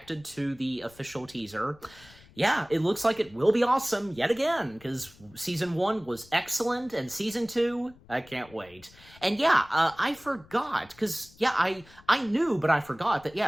to the official teaser, yeah, it looks like it will be awesome yet again, because season 1 was excellent, and season 2, I can't wait. And yeah, I forgot, because, yeah, I knew, but I forgot that,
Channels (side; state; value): left; noise; rumble, 25 dB below the sound